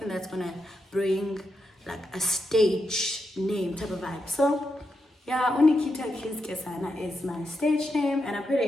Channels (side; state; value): both; normal; correlation 0.85